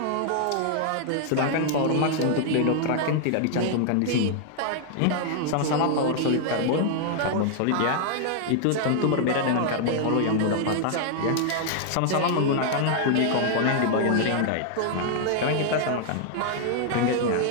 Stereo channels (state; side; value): different; both; correlation 0.00